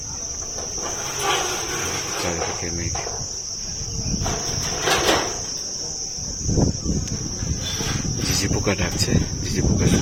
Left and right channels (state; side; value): identical; both; correlation 1.00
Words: চারিদিকে মেঘ। ঝিঝি পোকা ডাকছে, ঝিঝি পোকা